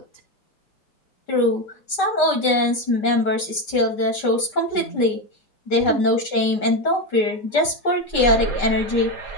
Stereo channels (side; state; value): right; late; 5.1 ms